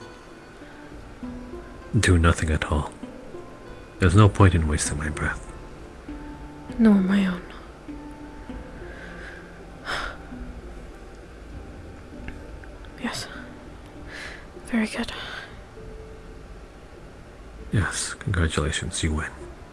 do nothing at all. There's no point in wasting my breath. Nor my own. Yes. Very good. Yes, congratulations, you win.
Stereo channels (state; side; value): identical; both; correlation 1.00